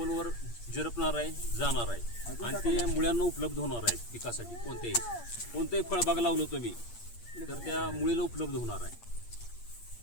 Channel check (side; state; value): right; late; 8.5 ms